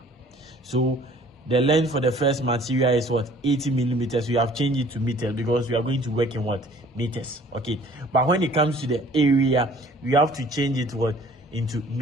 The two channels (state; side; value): normal; both; correlation 0.53